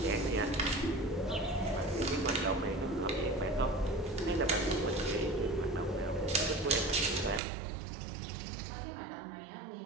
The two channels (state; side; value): drops out; left; at 7.4 s